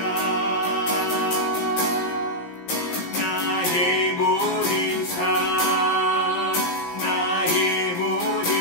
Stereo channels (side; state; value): right; late; 17 ms